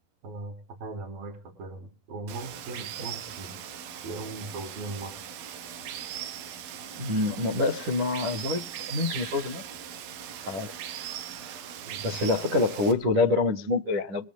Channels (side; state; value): left; late; 11 ms